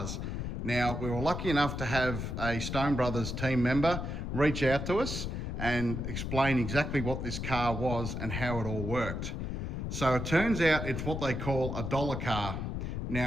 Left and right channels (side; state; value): left; noise; rumble, 4 dB below the sound